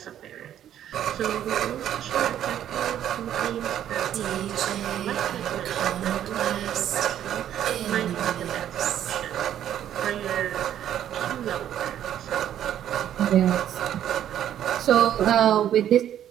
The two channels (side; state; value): left; quieter; 10.7 dB